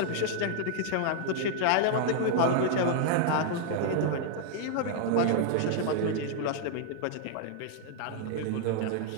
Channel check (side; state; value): both; different; correlation -0.01